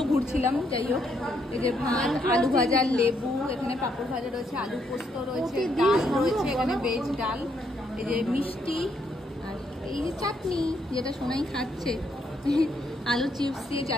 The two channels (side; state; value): both; normal; correlation 0.74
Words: ঘুরছিলাম, যাই হোক। এই যে ভাত, আলু ভাজা, লেবু, এখানে পাঁপড় ভাজা রয়েছে, আলু পোস্ত রয়েছে, ডাল রয়েছে, এখানে ভেজ ডাল, এই যে মিষ্টি, আর এই যে চাটনি, যেটা সোনাই খাচ্ছে, আলু চিপস দিয়ে